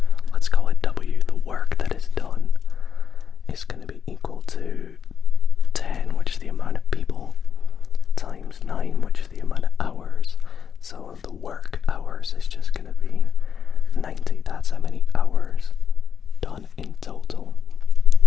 let's call it W, the work that is done is going to be equal to 10, which is the amount of people, times 9, which is the amount of hours. So the work hours is just going to be 90. That's how many hours done in total.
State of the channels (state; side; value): quieter; right; 7.3 dB